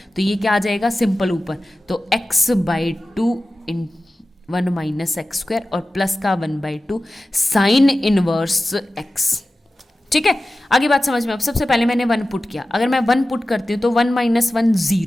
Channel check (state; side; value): normal; both; correlation 0.95